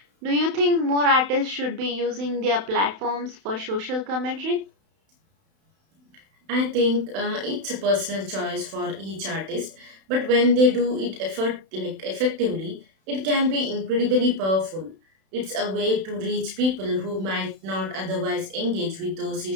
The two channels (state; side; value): late; left; 31 ms